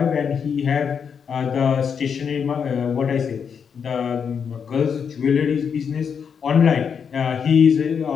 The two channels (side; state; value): right; quieter; 6.8 dB